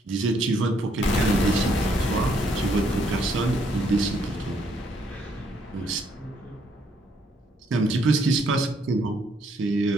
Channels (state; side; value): normal; both; correlation 0.70